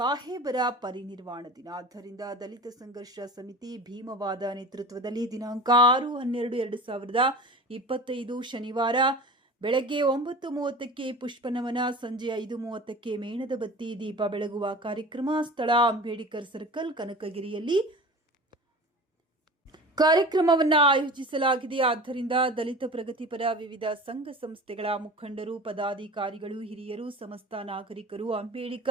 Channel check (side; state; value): both; normal; correlation 0.37